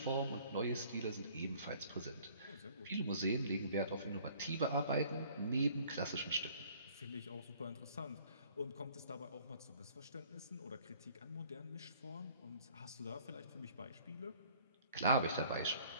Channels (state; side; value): inverted; both; correlation -0.56